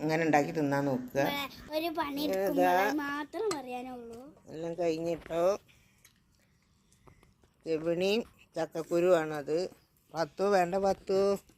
ഇങ്ങനെ ഉണ്ടാക്കി തിന്നാൻ നോക്കുക. എല്ലാം കഴിഞ്ഞിട്ടോ. ചെവിണിയും ചക്കക്കുരുവാണത്. പത്തു വേണ്ട, പത്തു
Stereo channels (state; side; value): identical; both; correlation 1.00